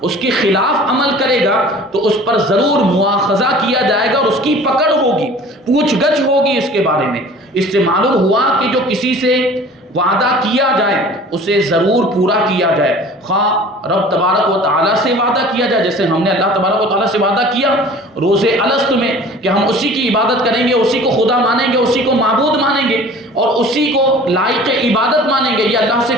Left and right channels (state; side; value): normal; both; correlation 0.45